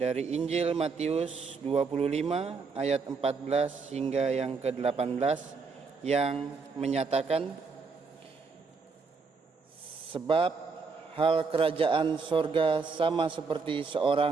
Injil Matius 25 ayat 14 hingga yang ke-18 yang menyatakan, sebab hal kerajaan sorga sama seperti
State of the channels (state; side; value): quieter; left; 4.7 dB